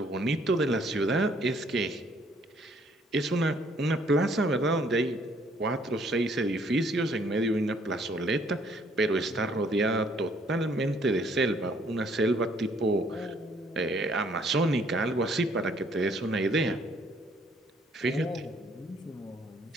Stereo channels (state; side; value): normal; both; correlation 0.64